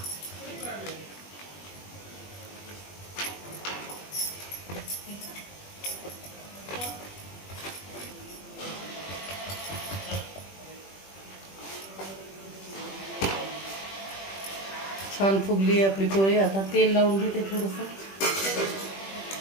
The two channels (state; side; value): late; right; 21 ms